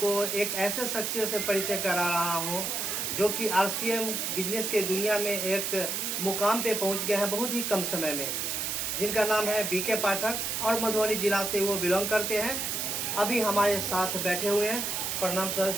एक ऐसे शख्सियत से परिचय करा रहा हूं जो कि आरसीएम बिजनेस के दुनिया में एक मुकाम पे पहुंच गए हैं बहुत ही कम समय में, जिनका नाम है बीके पाठक और मधुबनी जिला से वो बिलोंग करते हैं। अभी हमारे साथ बैठे हुए हैं। प्रणाम सर,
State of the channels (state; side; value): noise; right; hiss, 1 dB below the sound